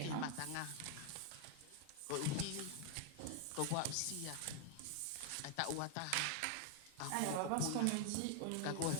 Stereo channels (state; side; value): different; both; correlation 0.00